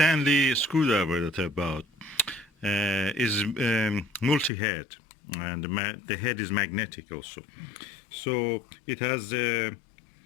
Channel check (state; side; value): drops out; right; at 4.5 s